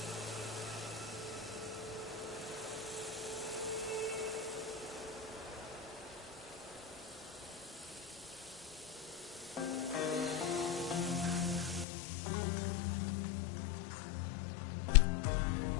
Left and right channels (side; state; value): right; drops out; at 11.9 s